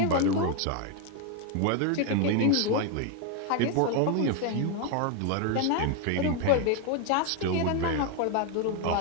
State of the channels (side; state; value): both; different; correlation 0.01